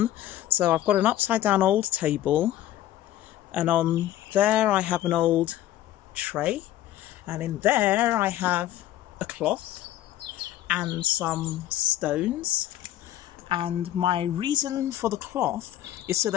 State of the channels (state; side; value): quieter; right; 13.3 dB